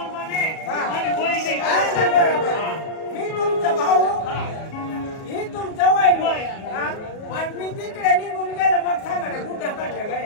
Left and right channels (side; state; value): right; late; 37 ms